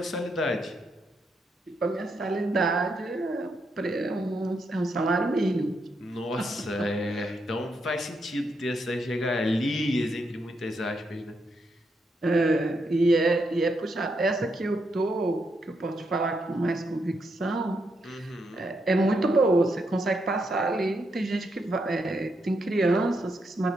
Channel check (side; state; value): both; normal; correlation 0.80